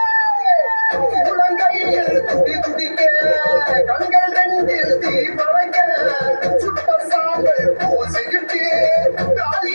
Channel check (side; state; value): both; inverted; correlation -1.00